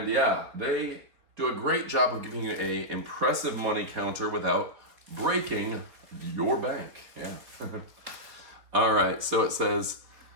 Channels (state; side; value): late; left; 4.5 ms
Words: yeah, they do a great job of giving you an impressive money counter without breaking your bank. Yeah. All right, so it says